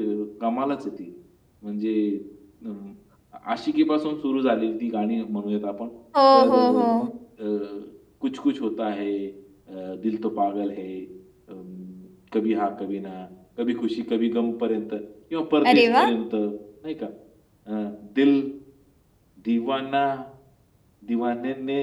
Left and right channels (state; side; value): identical; both; correlation 1.00